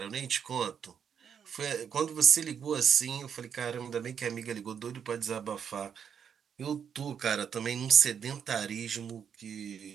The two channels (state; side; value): quieter; left; 7.6 dB